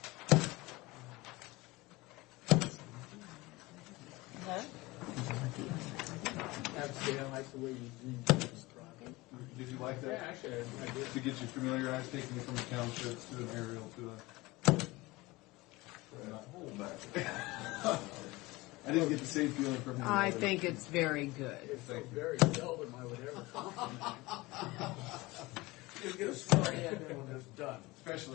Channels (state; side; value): quieter; right; 21.5 dB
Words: Huh? Actually, I like the way you described it. Did you like that? Yeah, actually, I did. To get you familiarized, taking it from the townships to an aerial to a... Hold back. I didn't get the same feeling from him. I think it's very good. It's so very seldom I would ever Just get a story and then when it's done.